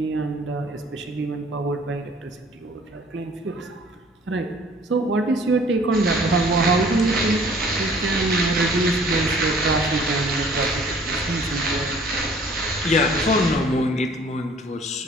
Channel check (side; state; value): both; normal; correlation 0.54